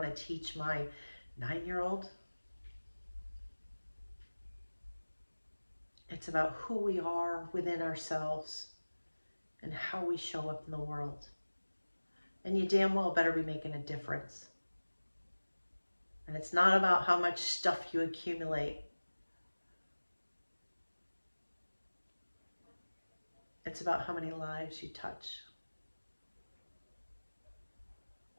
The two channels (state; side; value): inverted; both; correlation -1.00